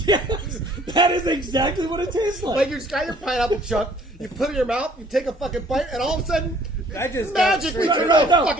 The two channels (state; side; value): normal; both; correlation 0.57